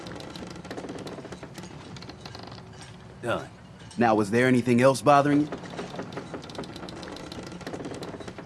Done. Now, was there anything else bothering you?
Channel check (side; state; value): both; identical; correlation 1.00